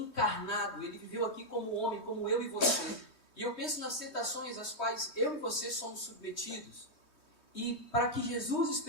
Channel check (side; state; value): right; late; 3.2 ms